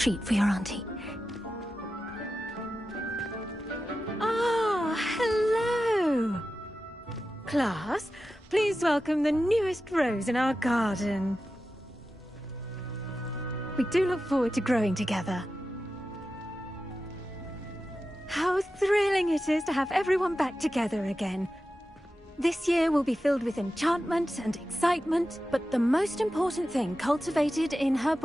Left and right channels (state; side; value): normal; both; correlation 0.92